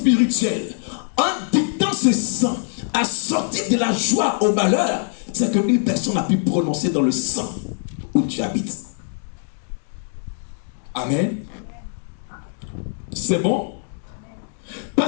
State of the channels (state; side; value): silent; right; digital silence